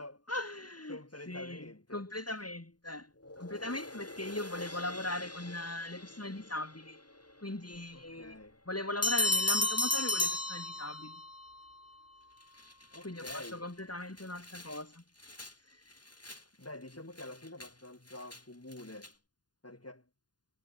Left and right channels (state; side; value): late; right; 0.70 ms